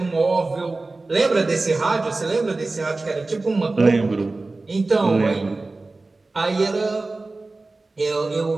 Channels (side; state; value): left; quieter; 3.3 dB